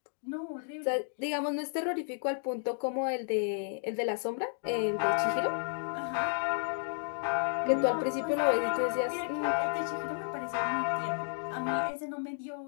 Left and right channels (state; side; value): silent; right; 56 dB below the other